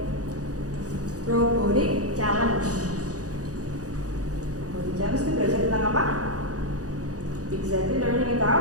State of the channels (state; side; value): late; left; 0.67 ms